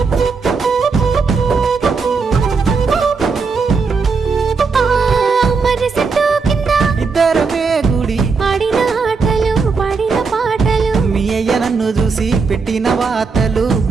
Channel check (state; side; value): quieter; left; 4.8 dB